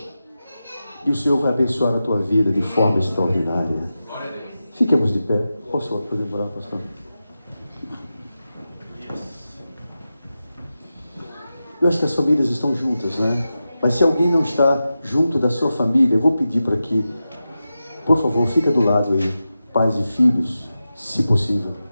e o Senhor vai abençoar a tua vida de forma extraordinária. Fiquemos de pé. Posso orar, pastor? Eu acho que as famílias estão juntas, né? Mas se alguém não está junto da sua família, eu vou pedir para que, por favor, fica do lado aí, pais e filhos, se possível.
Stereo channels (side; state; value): both; inverted; correlation -0.92